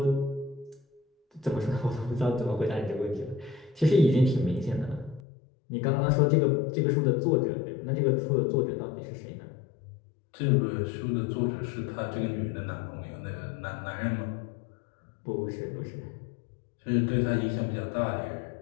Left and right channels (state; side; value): drops out; right; at 5.2 s